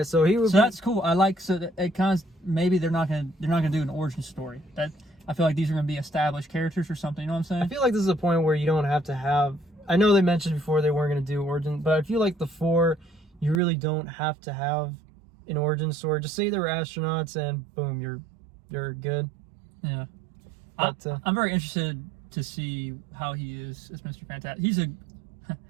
so he would So that's cool. I like, so that it kind of, maybe they're not gonna do an origin story. I feel like these are gonna be established characters or something, you know what I'm saying? I feel like this is a point where you don't have to have... I know they mentioned before they weren't going to do origin, but I feel like the 4, you really don't have to have an origin story. Just say they were astronauts and boom, you're good. Yeah. But, I'm very interested to see how he is as Mr. Fantastic.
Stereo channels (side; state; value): left; drops out; at 13.6 s